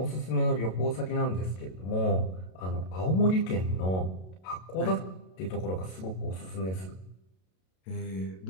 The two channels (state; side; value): late; right; 32 ms